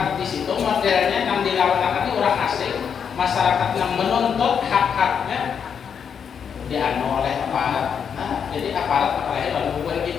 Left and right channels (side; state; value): right; quieter; 7.3 dB